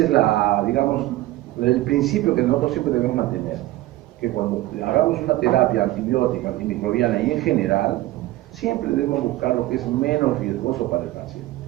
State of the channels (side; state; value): left; quieter; 16.8 dB